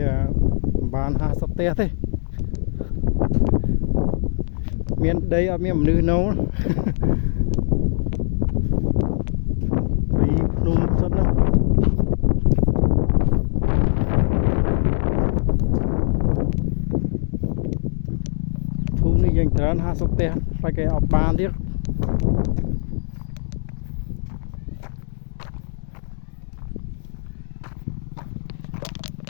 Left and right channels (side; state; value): right; silent; 64 dB below the other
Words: បាន50ផ្ទះទេមានដីអត់មានមនុស្សនៅពីភ្នំសិនហ្នឹងភូមិនេះយ៉ាងច្រើន50ផ្ទះតែគេអត់បានទៀត